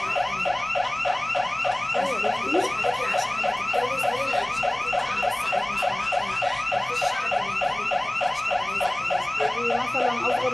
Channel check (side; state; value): left; noise; rumble, 28 dB below the sound